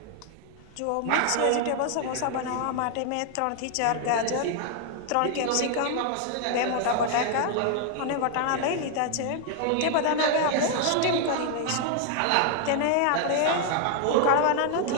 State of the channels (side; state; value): both; different; correlation 0.00